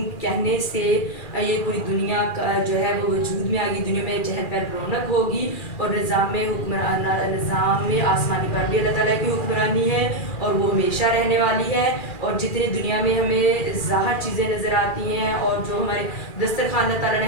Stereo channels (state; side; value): late; right; 2.4 ms